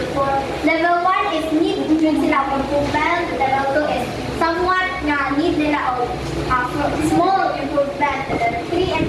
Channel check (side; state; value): both; identical; correlation 1.00